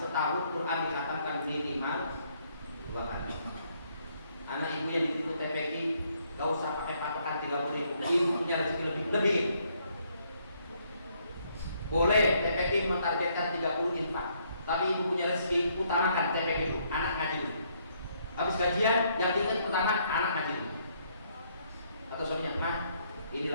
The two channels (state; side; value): inverted; both; correlation -0.70